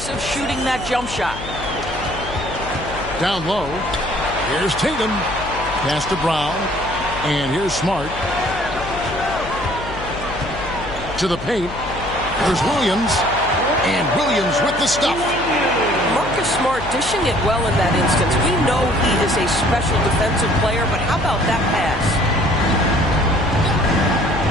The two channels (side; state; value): left; noise; hum, 12 dB below the sound